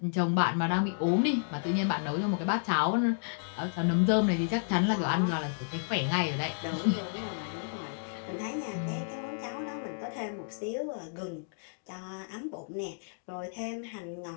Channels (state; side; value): silent; right; digital silence